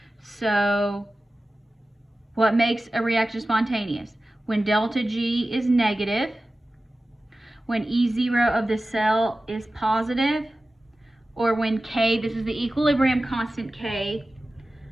So what makes a reaction spontaneous? When delta G is negative, when E0 of the cell is positive, or when K, this is the equilibrium constant K,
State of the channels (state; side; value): normal; both; correlation 0.95